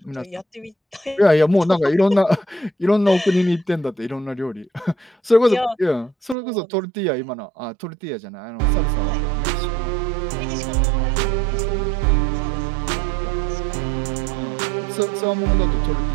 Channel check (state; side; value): drops out; left; at 6.4 s